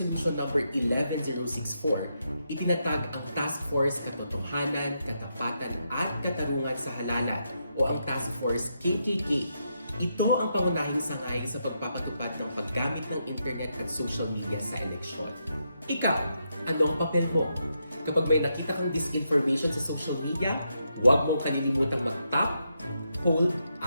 number 11064, itinatag ang Task Force Katotohanan, Katapatan at Katarungan sa Halalan o ang Task Force KKK. Ito ang pangunahing sangay sa pagpapatupad ng paggamit ng internet at social media sa eleksyon. Ikaw, anong papel mo? Kapag may nakita kang disinformation sa social media, huwag mong kalilimutang mag-tap, hold,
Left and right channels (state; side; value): inverted; both; correlation -0.82